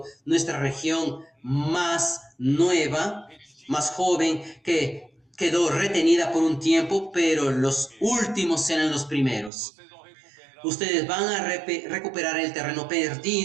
nuestra región más nueva, más joven, que quedó retenida por un tiempo, pero los últimos serán los primeros. Ustedes van a recuperar el terreno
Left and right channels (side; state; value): left; drops out; at 9.5 s